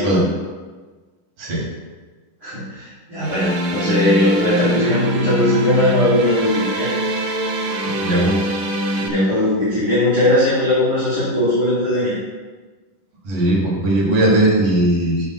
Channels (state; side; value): late; left; 11 ms